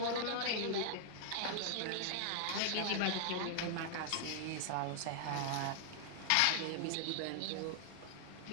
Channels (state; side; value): different; both; correlation -0.01